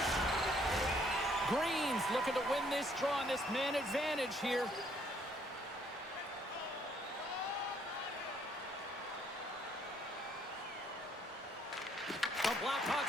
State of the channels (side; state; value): both; normal; correlation 0.66